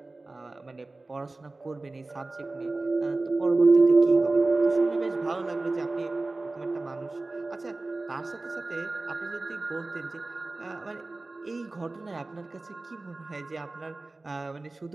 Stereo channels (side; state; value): left; quieter; 3.2 dB